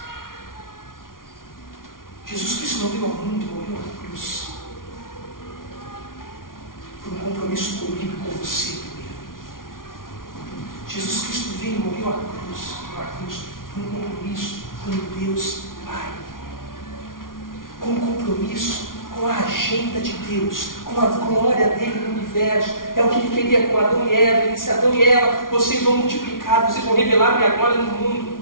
Jesus Cristo não veio ao mundo, morreu na cruz, por um compromisso comigo e com você primeiro. Jesus Cristo veio e morreu na cruz, por um compromisso com Deus Pai, com um compromisso com a agenda de Deus, com a glória dele no universo. É o que ele queria com Adão e Eva. Ele disse: Adão e Eva, vocês vão multiplicar, vocês vão revelar minha glória no mundo.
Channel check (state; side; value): late; right; 0.90 ms